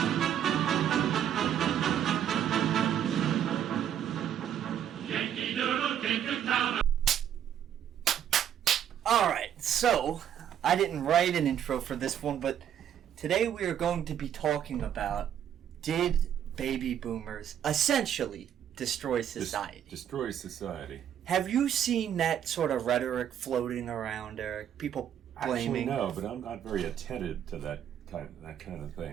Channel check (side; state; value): left; quieter; 9.7 dB